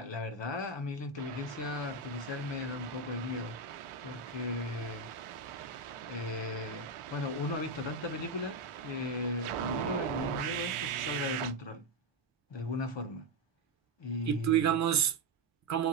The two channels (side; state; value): left; quieter; 3.1 dB